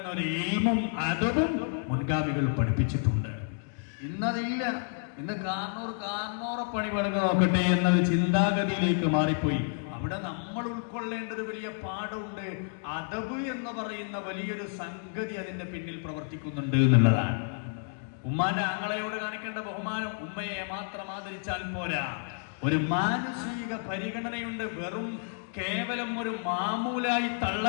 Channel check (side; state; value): right; silent; digital silence